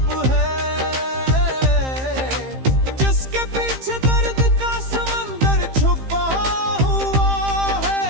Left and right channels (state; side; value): late; left; 15 ms